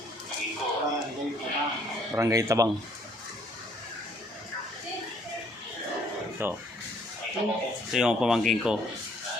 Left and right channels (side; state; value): both; normal; correlation 0.63